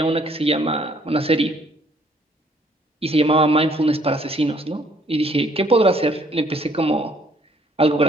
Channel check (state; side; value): normal; both; correlation 0.63